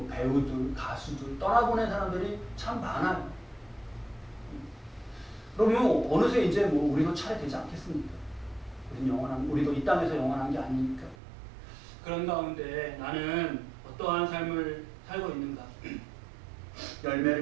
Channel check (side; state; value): left; drops out; at 11.2 s